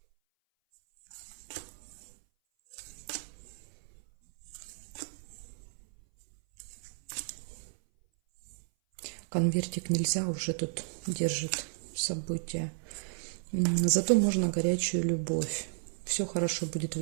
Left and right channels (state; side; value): silent; left; 56 dB below the other